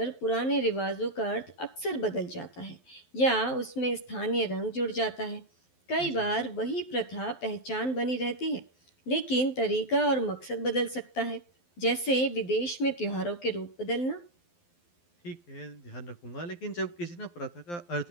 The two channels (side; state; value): right; late; 12 ms